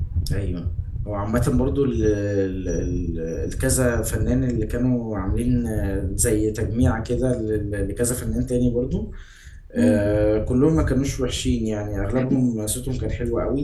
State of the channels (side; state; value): both; identical; correlation 1.00